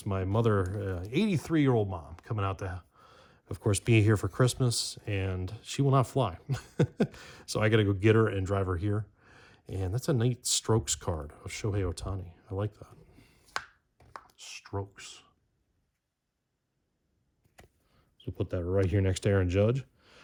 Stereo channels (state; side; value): identical; both; correlation 1.00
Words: my mother, 83-year-old mom, coming out to, of course, be here for Christmas, and she will not fly. So I got to go get her and drive her here. And that's a neat Strokes card of Shohei Ohtani. I like that. Strokes. So put that right here next to Aaron Judge.